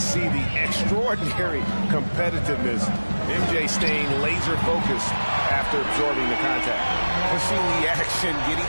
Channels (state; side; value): inverted; both; correlation -1.00